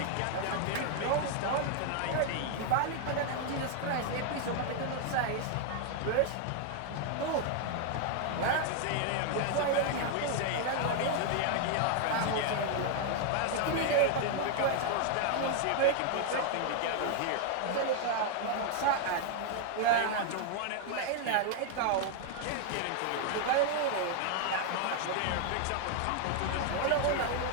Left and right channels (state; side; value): different; both; correlation 0.00